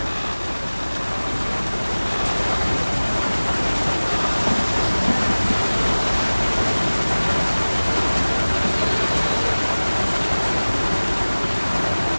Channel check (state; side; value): inverted; both; correlation -1.00